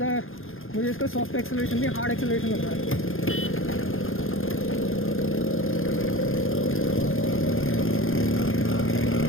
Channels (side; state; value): right; late; 0.60 ms